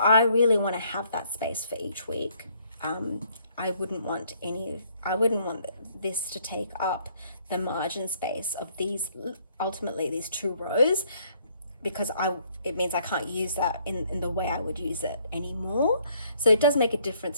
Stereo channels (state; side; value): inverted; both; correlation -0.66